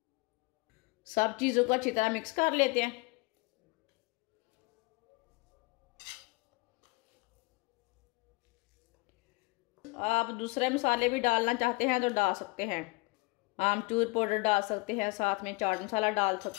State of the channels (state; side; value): quieter; right; 25.5 dB